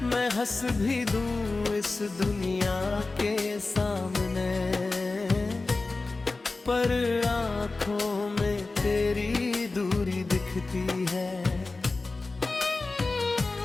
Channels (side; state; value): right; quieter; 3.5 dB